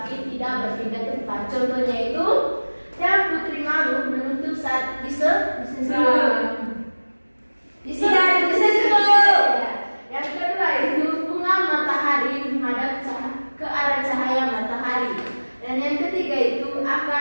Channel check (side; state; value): both; inverted; correlation -1.00